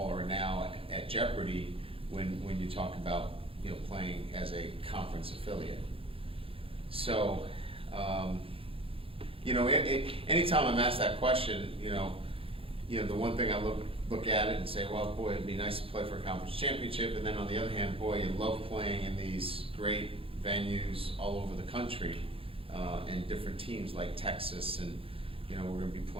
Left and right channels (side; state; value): left; late; 0.27 ms